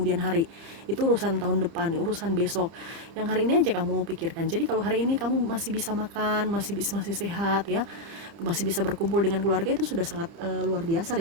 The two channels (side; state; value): left; late; 30 ms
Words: hari. Itu urusan tahun depan, urusan besok. Yang hari ini aja kamu pikirkan. Jadi kalau hari ini kamu masih bisa makan, masih sehat ya, masih bisa berkumpul dengan keluarga, itu sudah sangat luar biasa